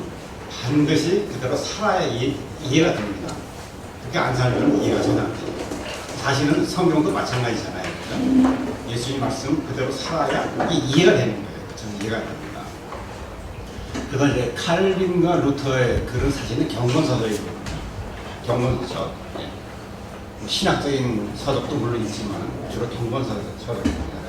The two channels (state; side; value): identical; both; correlation 1.00